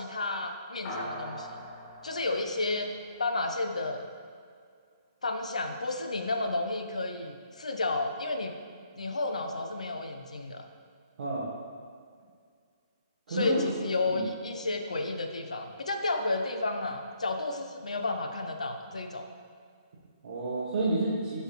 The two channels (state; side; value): inverted; both; correlation -0.70